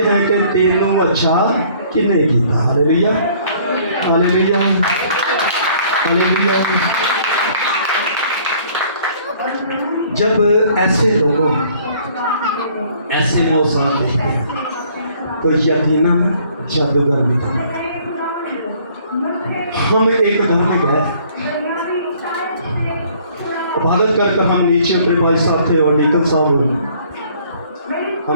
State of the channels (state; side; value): inverted; both; correlation -0.58